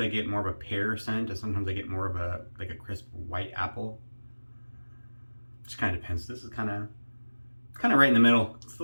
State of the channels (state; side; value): inverted; both; correlation -1.00